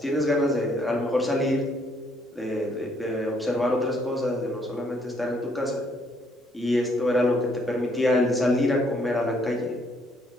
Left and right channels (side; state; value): both; normal; correlation 0.68